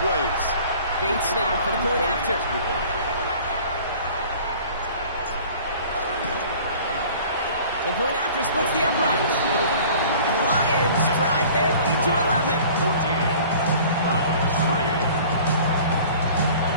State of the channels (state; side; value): inverted; both; correlation -0.47